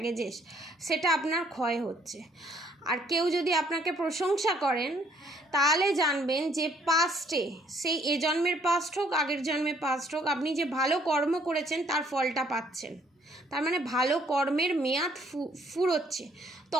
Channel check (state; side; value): normal; both; correlation 0.64